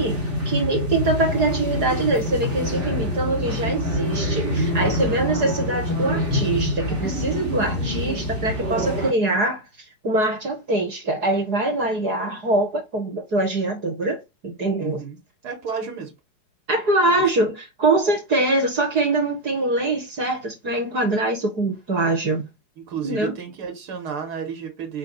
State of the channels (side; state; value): left; late; 4.8 ms